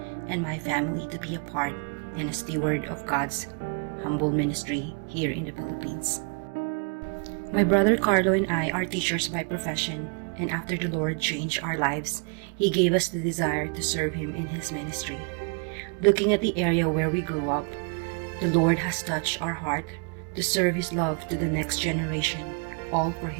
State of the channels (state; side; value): quieter; left; 36.2 dB